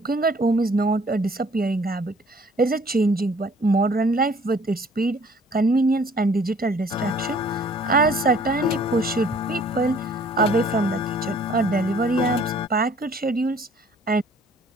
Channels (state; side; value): normal; both; correlation 0.56